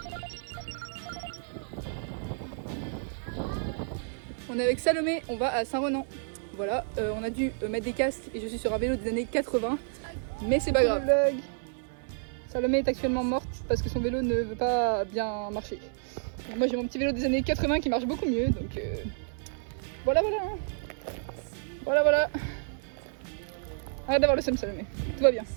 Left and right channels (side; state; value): left; silent; 58 dB below the other